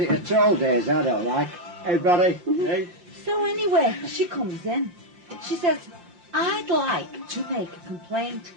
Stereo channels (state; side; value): late; left; 5.7 ms